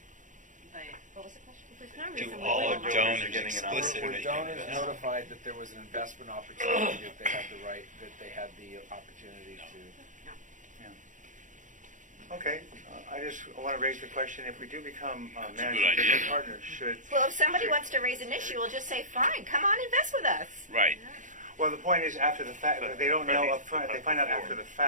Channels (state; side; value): late; left; 0.37 ms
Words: but What was the question? There's no Do reason we all wouldn't. our donors Were explicitly donors notified that there was an investment opportunity, that they had the right, that they had the opportunity to? Okay, I just want to raise the question, if we do become That's a good managing idea, general though. partners, should... Well, if somebody wants to raise an issue, we'll just say, fine, come on, invest with us. Right. Well, the point is after the fact, they don't know up front. They find out after the